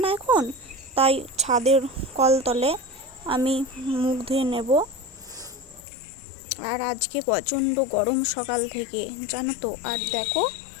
না এখন, তাই ছাদের কলতলে আমি মুখ ধুয়ে নেব। আর আজকে প্রচণ্ড গরম সকাল থেকে, জানো তো। আর দেখো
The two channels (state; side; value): drops out; right; at 5.8 s